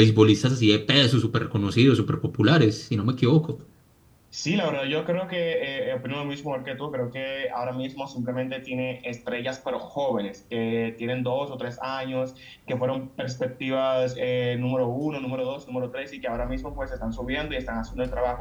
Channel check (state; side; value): identical; both; correlation 1.00